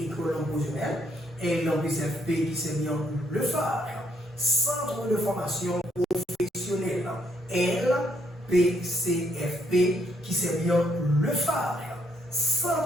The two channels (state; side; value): normal; both; correlation 0.72